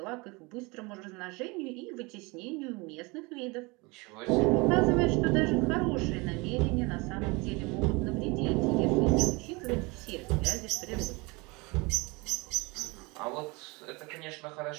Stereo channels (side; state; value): left; quieter; 26.4 dB